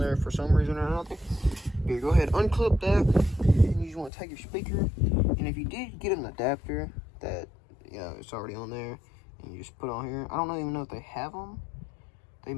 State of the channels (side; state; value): right; drops out; at 4.1 s